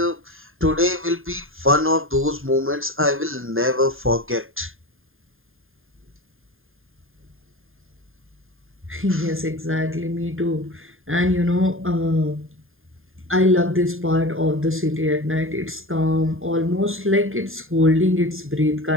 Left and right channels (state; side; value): late; left; 0.59 ms